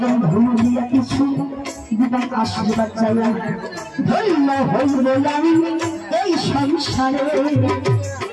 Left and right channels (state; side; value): identical; both; correlation 1.00